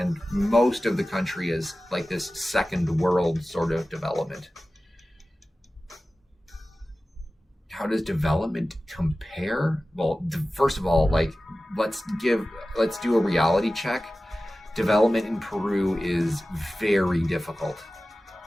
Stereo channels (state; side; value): normal; both; correlation 0.96